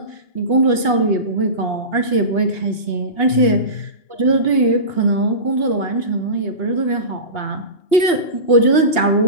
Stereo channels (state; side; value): late; right; 2.8 ms